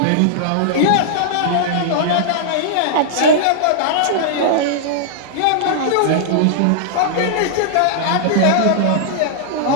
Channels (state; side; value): different; both; correlation -0.01